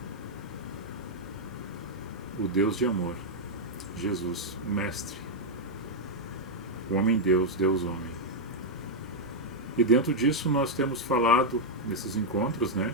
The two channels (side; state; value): both; normal; correlation -0.02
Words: o Deus de amor, Jesus, o Mestre, o Homem-Deus, Deus-Homem. E dentro disso nós temos falado nesses encontros,